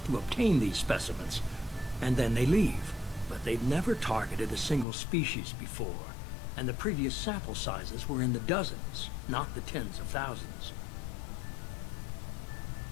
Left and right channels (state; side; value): drops out; right; at 4.9 s